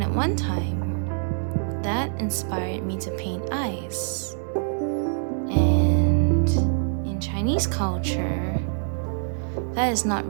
at one time, that inspired me to paint eyes. And in Chinese culture, that is not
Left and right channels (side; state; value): left; silent; digital silence